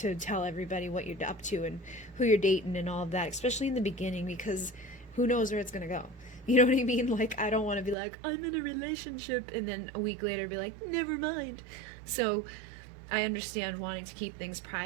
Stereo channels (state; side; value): drops out; left; at 8.0 s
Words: tell everybody what you're up to and who you're dating and all of that, especially in the beginning, because who knows where it's going to go. You know what I mean? Like, I don't want to be like, I'm in a relationship, and then a week later be like, never mind. So I understand wanting to keep things